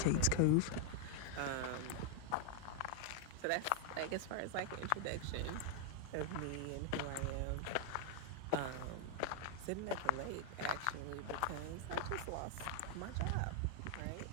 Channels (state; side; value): different; both; correlation 0.00